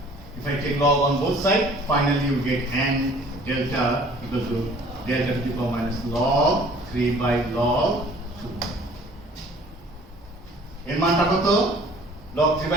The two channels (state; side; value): normal; both; correlation 0.52